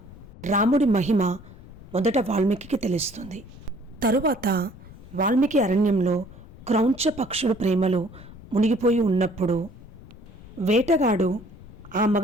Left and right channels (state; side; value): noise; left; rumble, 19 dB below the sound